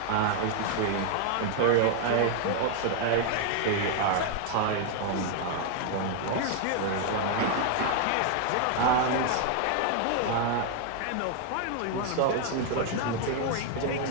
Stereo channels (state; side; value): different; both; correlation 0.00